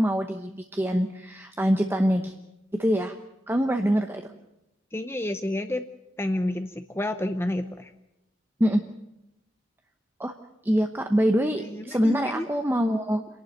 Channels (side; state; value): both; normal; correlation 0.91